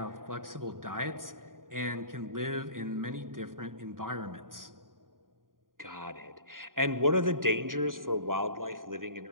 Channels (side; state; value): left; late; 0.90 ms